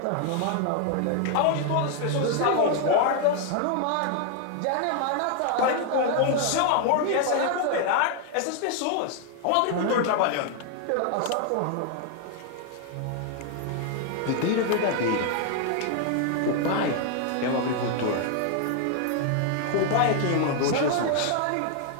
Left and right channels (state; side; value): different; both; correlation 0.00